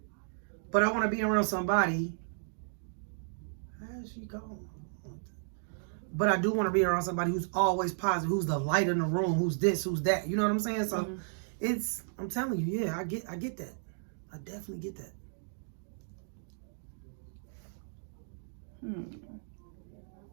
But I want to be around somebody. How's she going? But I do want to be around somebody who's always positive, who's the light in the room, who's this, who's that. You know what I'm saying? So I'm telling you, yeah, I get that. I definitely get that.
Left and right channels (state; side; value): silent; left; digital silence